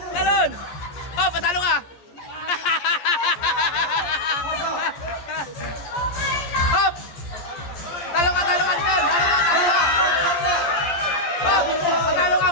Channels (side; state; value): right; late; 14 ms